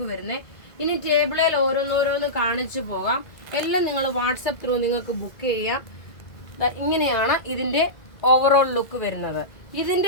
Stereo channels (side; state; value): right; late; 2.0 ms